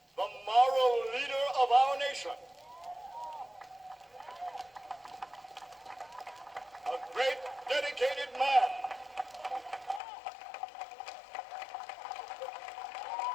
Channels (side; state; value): right; drops out; at 10.0 s